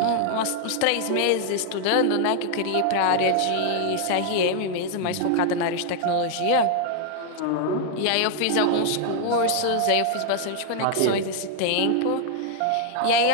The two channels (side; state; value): both; different; correlation 0.00